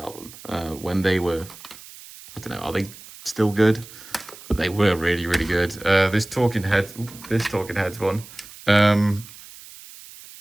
When they were, I don't know, are they still good? But they were really, really good. This Talking Heads one.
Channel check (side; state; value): right; noise; hiss, 18 dB below the sound